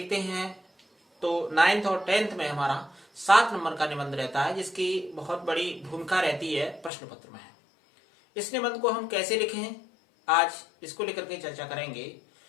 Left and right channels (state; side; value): drops out; right; at 6.9 s